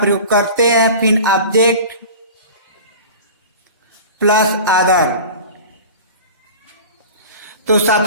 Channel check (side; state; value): both; inverted; correlation -0.37